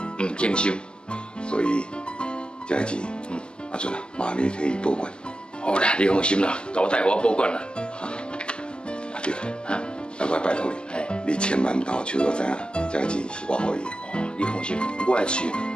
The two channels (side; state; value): right; late; 0.054 ms